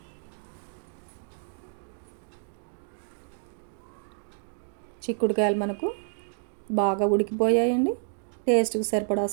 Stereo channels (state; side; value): silent; left; 59 dB below the other